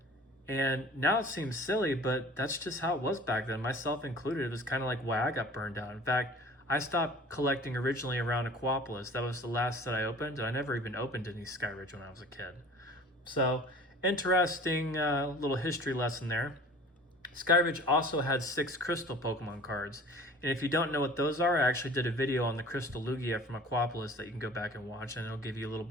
And now it seems silly, but that's just how it was back then, myself included. It was kind of like why I got burned out. In fact, I stopped collecting originally around Aquapolis. That was the last that I opened, and I never even opened any Skyridge when I was a kid. So, interesting little history lesson there. Skyridge also had 6 Crystal Pokemon cards, and if you don't know what those are, I actually did a video on the Crystal Lugia from Aquapolis that you can go back and watch, and it'll give you a little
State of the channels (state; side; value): normal; both; correlation 0.44